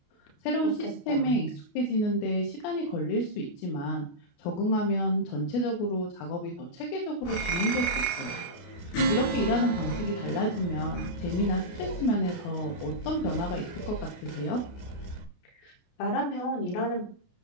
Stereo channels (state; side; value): late; right; 28 ms